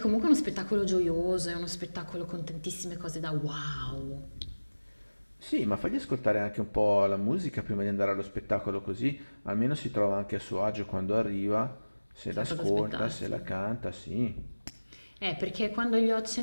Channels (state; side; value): inverted; both; correlation -1.00